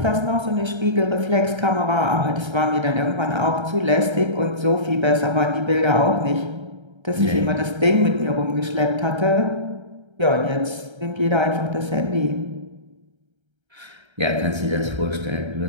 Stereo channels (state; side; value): late; left; 1.3 ms